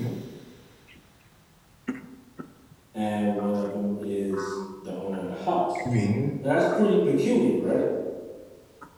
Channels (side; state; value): both; identical; correlation 1.00